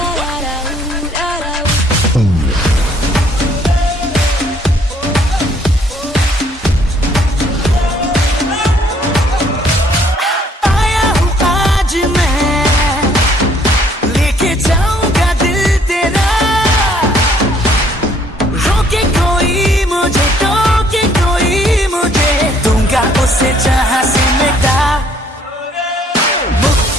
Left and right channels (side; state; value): both; normal; correlation 0.63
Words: उसे जहां से मिटा